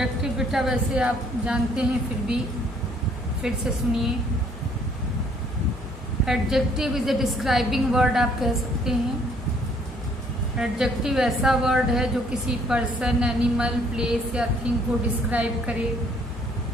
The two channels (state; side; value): normal; both; correlation 0.63